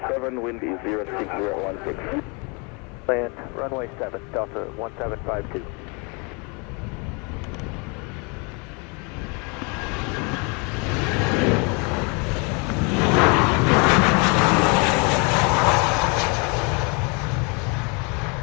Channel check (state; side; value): quieter; right; 32.1 dB